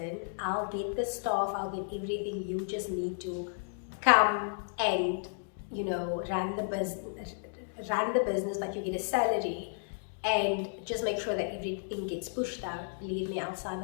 I'll get the staff, I'll get everything, you just need to come and run the business, but you get a salary, and just make sure that everything gets pushed out, believe me, I'll sign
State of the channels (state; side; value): silent; right; digital silence